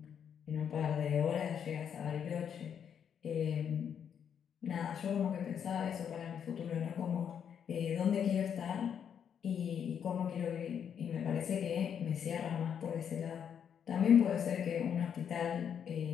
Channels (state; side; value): quieter; right; 8.1 dB